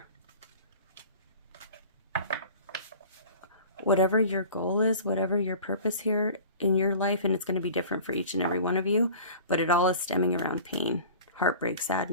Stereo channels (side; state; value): both; inverted; correlation -0.41